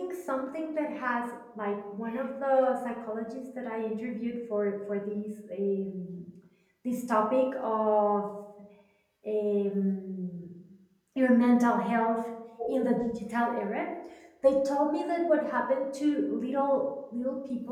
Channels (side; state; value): both; identical; correlation 1.00